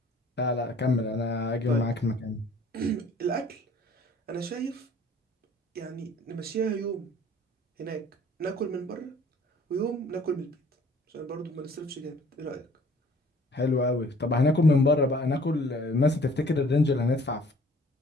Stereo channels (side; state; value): both; normal; correlation 0.54